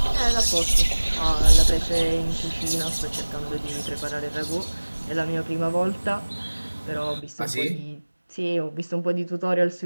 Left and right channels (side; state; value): both; inverted; correlation -1.00